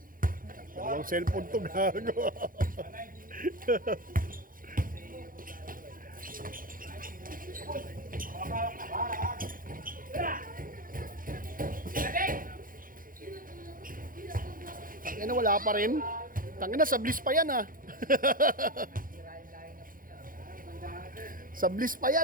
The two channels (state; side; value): late; left; 0.40 ms